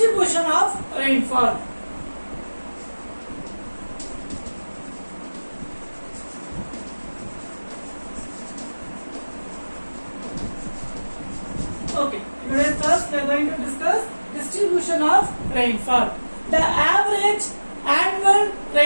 of rainfall. Okay, in today's class, we are going to discuss distribution of rainfall. The average annual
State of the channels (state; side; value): inverted; both; correlation -1.00